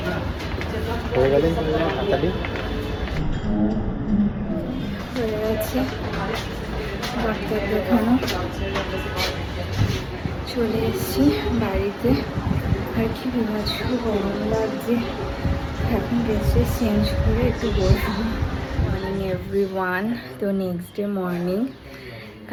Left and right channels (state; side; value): identical; both; correlation 1.00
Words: হয়ে গেলেন হাতালি। হয়ে গেছে ডাক্তার দেখানো, চলে এসেছি বাড়িতে। আর কি বিভৎস গরম লাগছে, এখন ড্রেসে চেঞ্জ করে একটু বসবো। Morning everyone. তো নেক্সট ডে মর্নিং,